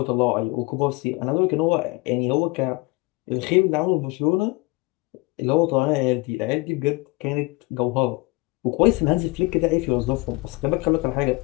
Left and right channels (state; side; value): quieter; right; 23.9 dB